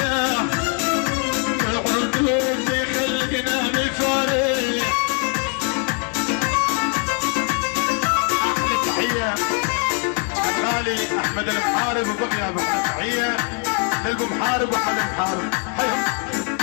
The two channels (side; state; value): right; quieter; 36.8 dB